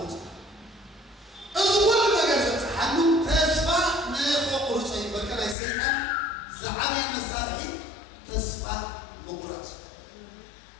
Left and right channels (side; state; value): right; drops out; at 5.6 s